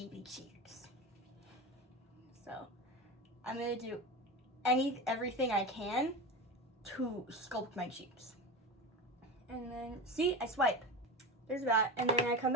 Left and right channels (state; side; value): normal; both; correlation 0.24